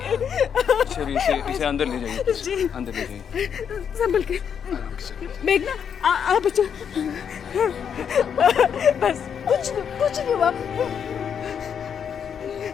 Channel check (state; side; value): quieter; right; 7.7 dB